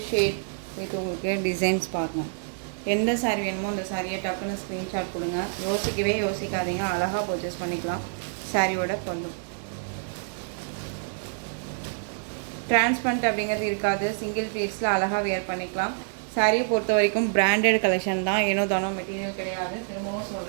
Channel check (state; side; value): silent; left; 60 dB below the other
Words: ஷேட் வித் உங்களுக்கு டிசைன்ஸ் பார்க்கணும். எந்த சாரீ வேணுமோ அந்த சாரியை டக்குன்னு ஸ்க்ரீன்ஷாட் கொடுங்க, யோசிக்கவே யோசிக்காதீங்க, அழகாக பர்ச்சேஸ் பண்ணிக்கலாம். சாரியோட பல்லு டிரான்ஸ்பரண்ட் அப்படிங்கிறது இருக்காது. சிங்கிள் பீஸில் அழகாக வேர் பண்ணிக்கலாம். சாரியை பொறுத்த வரைக்கும் பிராண்டட் கலெக்ஷன் தான், ஏனோ தானோ மெட்டீரியல் கிடையாது. திரும்பவும்